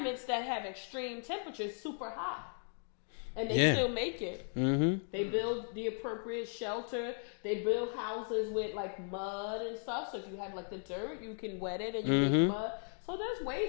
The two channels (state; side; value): silent; right; 53 dB below the other